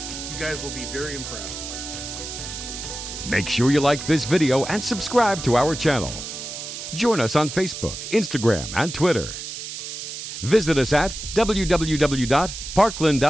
You guys will be very impressed. Make sure you like this video and subscribe to our channel. Join us on Facebook, Instagram, and Twitter. Visit us at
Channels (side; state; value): right; noise; hiss, 8 dB below the sound